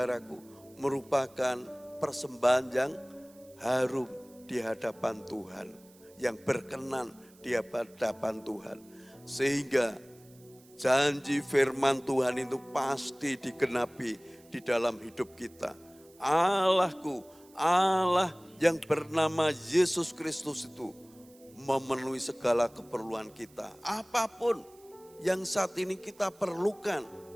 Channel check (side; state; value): right; noise; hiss, 27 dB below the sound